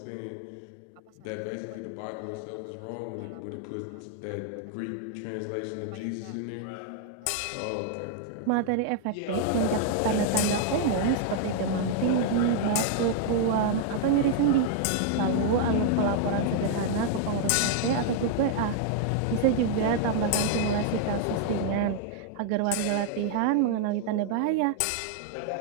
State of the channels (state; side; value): different; both; correlation 0.00